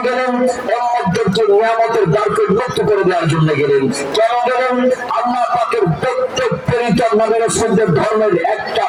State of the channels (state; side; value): identical; both; correlation 1.00